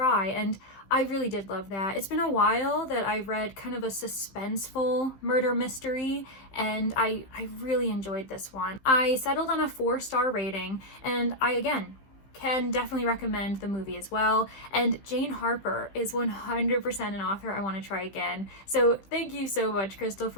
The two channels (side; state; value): right; late; 15 ms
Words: and I really did love that. It's been a while that I read kind of a suspenseful murder mystery, and I really enjoyed this one. I settled on a 4-star rating, and I, again, can definitely recommend the movie as well. And Jane Harper is 100% an author I want to try again. So thank you so much, Krystal,